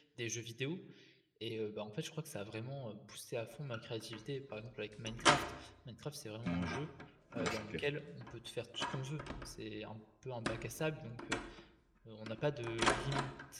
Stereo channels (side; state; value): both; identical; correlation 1.00